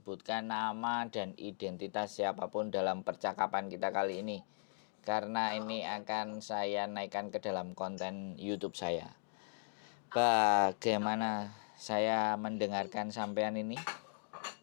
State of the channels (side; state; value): right; silent; digital silence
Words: nama dan identitas siapapun dalam percakapan kita kali ini. Karena Oh, ini oke, oke, oke. akan saya naikkan ke dalam konten YouTube saya. Oh, oke. Oke, oke. Bagaimana saya mendengarkan sampean ini?